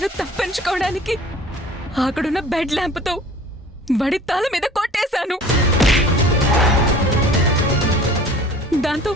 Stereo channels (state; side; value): normal; both; correlation 0.46